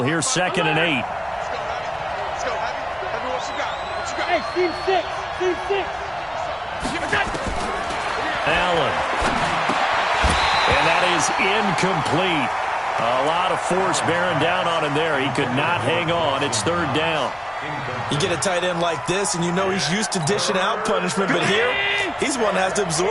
Here's 2nd and 8. Let's go, Heavy, what you got? Hey, Steve 6. Allen. And that is incomplete. A lot of force bearing down on him there. He could not hang on. It's 3rd down. You get a tight end like this, and you know he's used to dishing out punishment, but here, he's one that has to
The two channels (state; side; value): identical; both; correlation 1.00